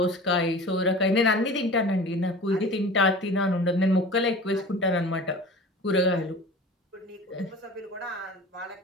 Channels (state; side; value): normal; both; correlation 0.38